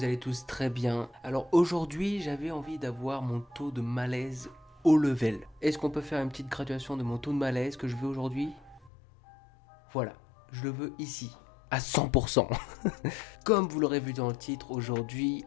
allez tous très bien. Alors aujourd'hui j'avais envie d'avoir mon taux de malaise au level. Est-ce qu'on peut faire une petite graduation de mon taux de malaise que je veux aujourd'hui? Voilà, je le veux ici, à 100%. Comme vous l'aurez vu dans le titre, aujourd'hui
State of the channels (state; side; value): drops out; right; at 8.9 s